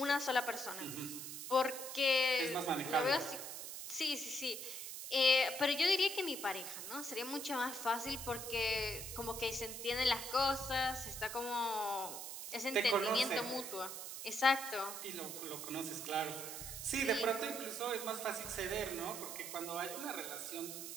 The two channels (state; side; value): noise; right; hiss, 7 dB below the sound